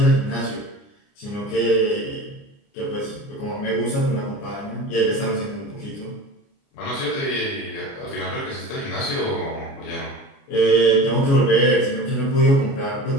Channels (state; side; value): late; right; 29 ms